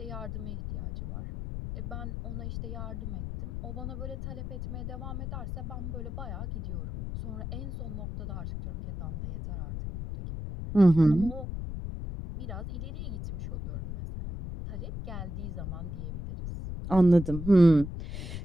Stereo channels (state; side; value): noise; left; rumble, 6 dB below the sound